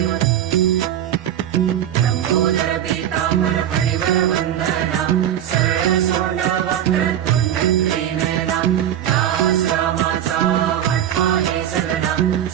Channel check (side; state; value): left; quieter; 10.7 dB